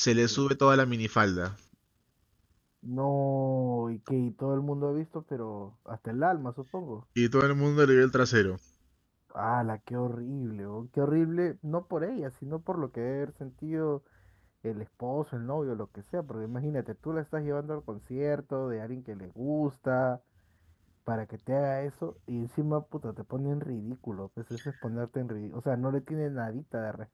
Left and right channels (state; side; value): identical; both; correlation 1.00